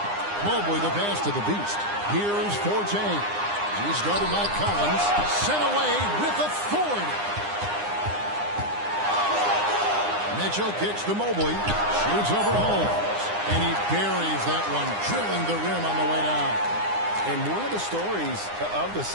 Mobley the pass to the Beast. Here's Forte. He's guarded by Collins. Sent away with authority. Mitchell kicks to Mobley. Shoots over Holmes. And he buries that one, drilling the rim on the way down. And one of the stories of the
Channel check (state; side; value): late; left; 9.8 ms